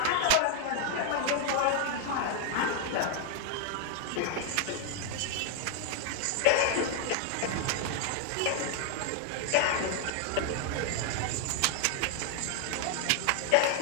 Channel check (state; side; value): different; both; correlation 0.00